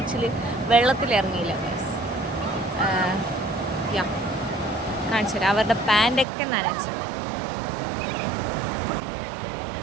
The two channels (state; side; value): drops out; left; at 6.2 s